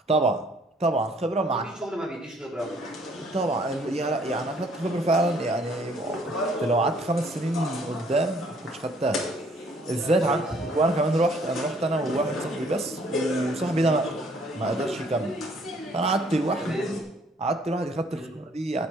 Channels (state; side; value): normal; both; correlation 0.61